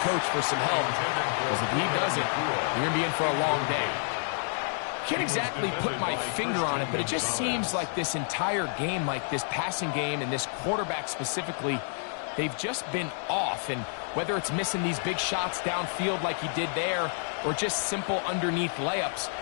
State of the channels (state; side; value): silent; right; 59 dB below the other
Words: coach for some help, because if he doesn't, you're going to be in for a long day. Can't exactly put my finger on it, but it just seems like this entire game, like this passing game and this quarterback specifically, they've just been off. And whether it's missing these big shots downfield like he did there, or just simple underneath layups,